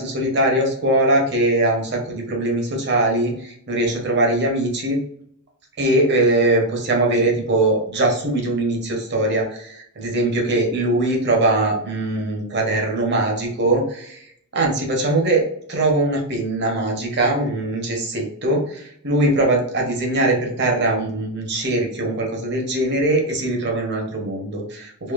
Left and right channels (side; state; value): both; normal; correlation 0.00